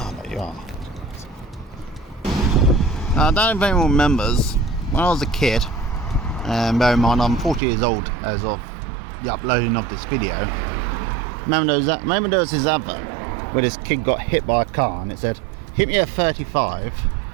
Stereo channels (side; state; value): left; drops out; at 7.6 s